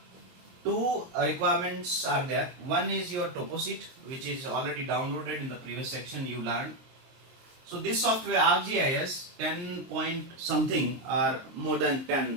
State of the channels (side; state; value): left; late; 23 ms